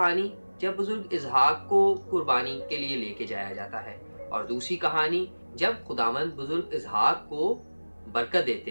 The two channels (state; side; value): inverted; both; correlation -1.00